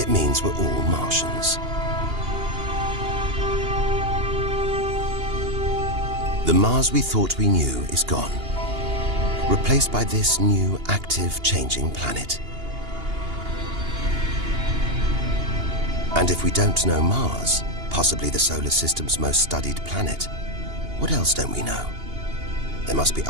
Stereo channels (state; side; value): late; left; 2.8 ms